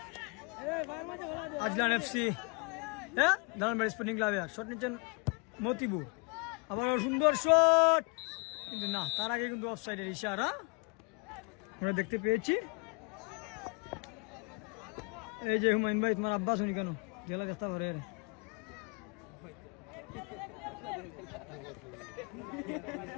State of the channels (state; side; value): quieter; right; 31.0 dB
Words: আজলান এফসি হ্যাঁ দালানবাড়ি স্পোর্টিং ক্লাবে শট নিচ্ছেন মতিবুর আবার সুন্দর শট কিন্তু না তার আগে কিন্তু অফসাইডের ইশারা আমরা দেখতে পেয়েছি এই যে হুমায়ুন ভাই তোমার আব্বা শুনি কেন গেলা দেখতে পারে